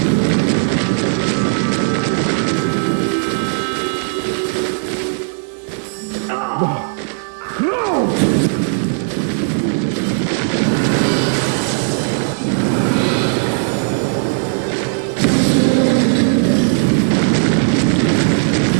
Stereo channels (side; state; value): left; silent; 66 dB below the other